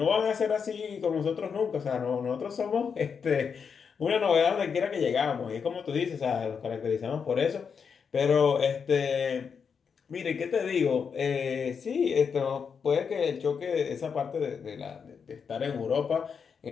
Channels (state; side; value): quieter; right; 6.3 dB